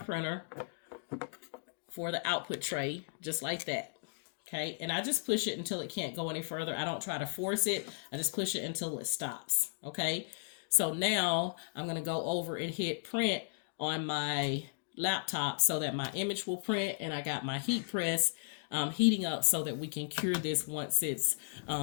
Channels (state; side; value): silent; right; digital silence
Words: for the output tray, just like that. Okay, and I just push it until it can't go any further. I don't try to force it. I just push it until it stops. Okay, so now I'm going to go over and hit print on my laptop so that my image will print, and I got my heat press heating up so that we can cure this once it's